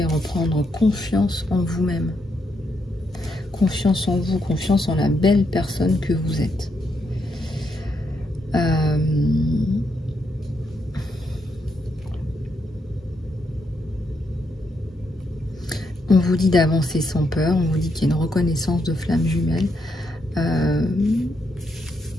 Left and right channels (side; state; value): both; normal; correlation 0.79